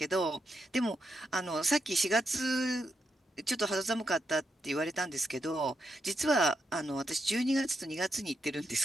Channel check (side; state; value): both; normal; correlation 0.82